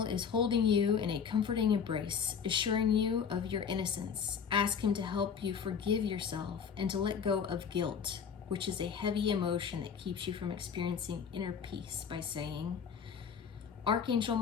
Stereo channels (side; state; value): right; quieter; 6.9 dB